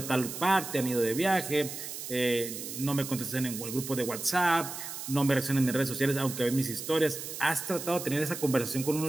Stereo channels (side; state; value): right; noise; hiss, 8 dB below the sound